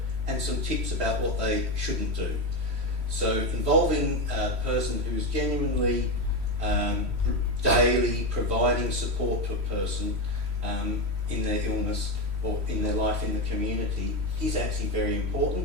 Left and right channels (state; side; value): late; left; 3.1 ms